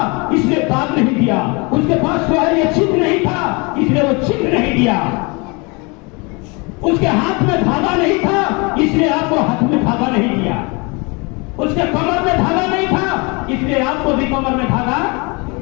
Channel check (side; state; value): right; quieter; 29.2 dB